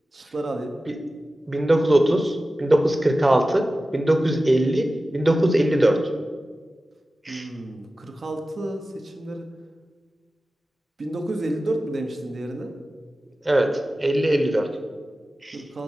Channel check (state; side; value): normal; both; correlation 0.95